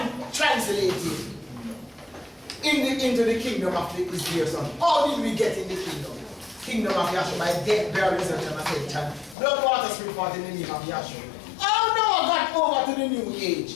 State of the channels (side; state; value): right; drops out; at 9.3 s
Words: translated into the kingdom of his dear son. How did we get in the kingdom? Kingdom of Yahshua by death, burial, resurrection, and ascension. Blood, water, spirit, forth in the name of Yahshua. How Noah got over to the new